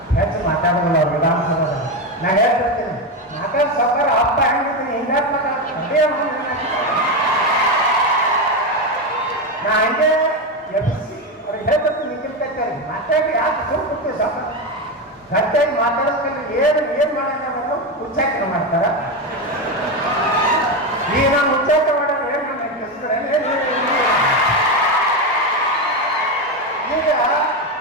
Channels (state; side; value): normal; both; correlation 0.13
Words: ಹೆಚ್ಚು ಮಾತಾಡೋಲ್ಲ ಅವ್ರು ವಿಧಾನಸಭೆಯಲ್ಲಿ. ನಾನು ಹೇಳ್ತಿರ್ತೀನಿ ಮಾತಾಡ ಸರ್ಕಾರ ಹಬ್ಬ ಹೆಂಗಿದ್ದೀನಿ ಹಿಂಗಾರು ಮಾತಾಡ್ತೀನಿ ನಾ ಹಂಗೆ ಎಬ್ಬಿಸಿ ಅವ್ರಿಗೆ ಹೇಳ್ತಿರ್ತೀನಿ ನಿಖಿಲ್ ಕತ್ತಿಯವ್ರಿಗೆ ಮಾತಾಡಿ ಯಾಕೆ ಸುಮ್ಮನೆ ಸ್ವಲ್ಪ ಗಟ್ಟಿಯಾಗಿ ಮಾತಾಡೋದ್ರಲ್ಲಿ ಏನು ಮಾಡೋದು ಉಚ್ಚಾಟನ ಮಾಡ್ತಾರ. ಈಗ ನಾನು ಉಚ್ಚಾಟ ಮಾಡೋದು ಏನು ಈಗ